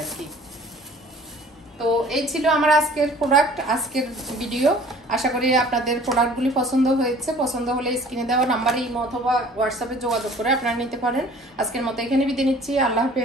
আর কি। তো এই ছিল আমার আজকের প্রোডাক্ট, আজকের ভিডিও। আশা করি আপনাদের প্রোডাক্টগুলি পছন্দ হয়েছে। পছন্দ হলে স্ক্রিনে দেওয়া নাম্বারে ইমো অথবা হোয়াটসঅ্যাপে যোগাযোগ করে আপনারা নিতে পারেন। আজকের মতো এখানে বিদায় নিচ্ছি। আল্লাহ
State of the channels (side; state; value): both; normal; correlation 0.50